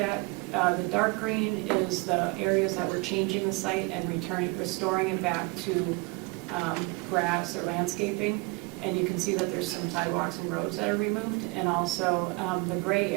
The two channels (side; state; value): left; quieter; 27.0 dB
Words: the dark green is the areas that we're changing the site and restoring it back to grass or landscaping. And you can see that there's some sidewalks and roads that are removed. And also the gray